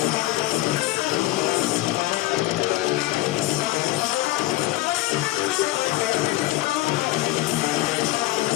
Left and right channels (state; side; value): quieter; right; 17.6 dB